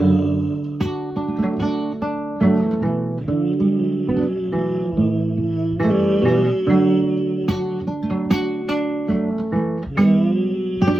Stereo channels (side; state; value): both; normal; correlation 0.92